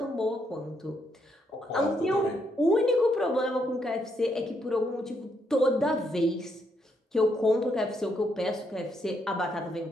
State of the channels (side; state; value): both; normal; correlation 0.76